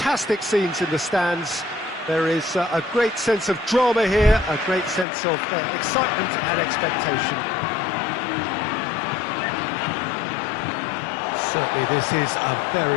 scenes in the stands. There is a great sense of drama here, a great sense of excitement and expectation. Certainly this is a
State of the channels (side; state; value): right; drops out; at 5.1 s